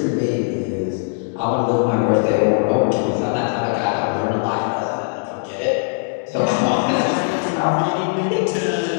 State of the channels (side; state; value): right; silent; digital silence